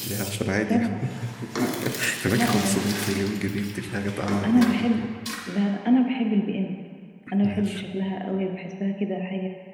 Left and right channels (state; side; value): identical; both; correlation 1.00